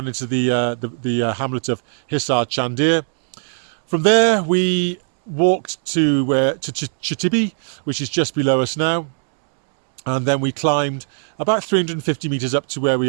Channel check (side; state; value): left; silent; 66 dB below the other